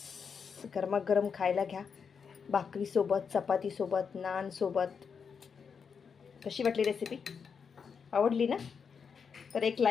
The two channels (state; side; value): quieter; right; 6.2 dB